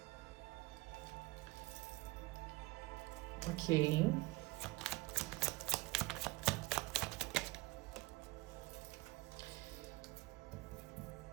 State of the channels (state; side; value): quieter; left; 20.8 dB